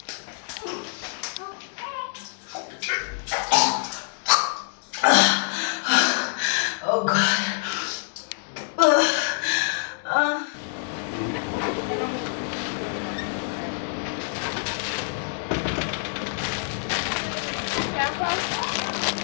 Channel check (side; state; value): right; silent; 61 dB below the other